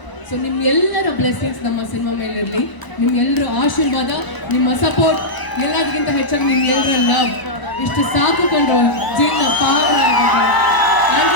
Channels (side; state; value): right; late; 1.0 ms